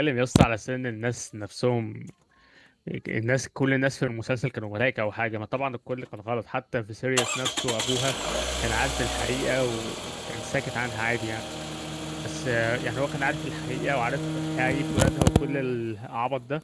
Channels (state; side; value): identical; both; correlation 1.00